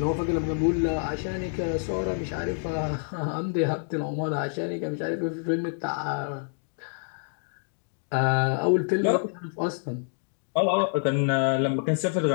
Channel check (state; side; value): silent; right; digital silence